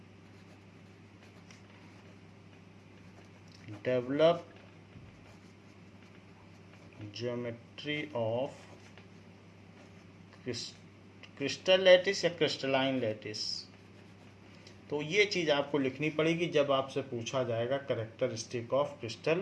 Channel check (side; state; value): both; identical; correlation 1.00